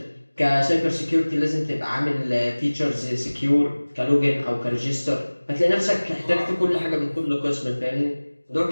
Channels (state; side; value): inverted; both; correlation -1.00